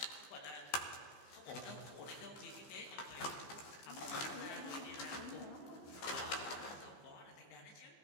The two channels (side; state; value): right; late; 15 ms